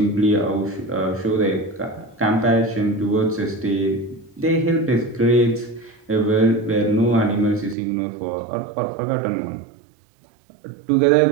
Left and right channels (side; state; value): left; drops out; at 7.8 s